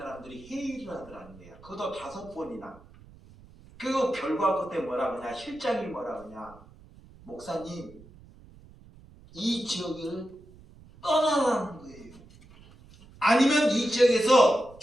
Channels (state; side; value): noise; right; rumble, 22 dB below the sound